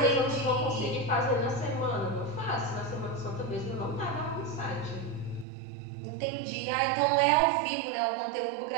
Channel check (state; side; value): drops out; left; at 5.5 s